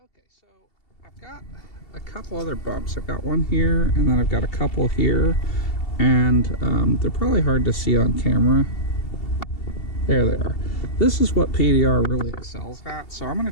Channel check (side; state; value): right; late; 2.7 ms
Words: Okay, so I've got a couple other bumps. I've got one here, and then I've got a couple here, and they're probably hard to see on camera. There they are. This is what PDR really excels at. So I'm going